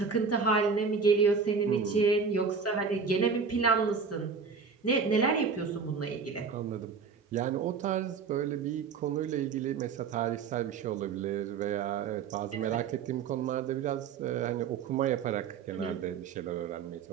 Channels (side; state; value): left; quieter; 5.6 dB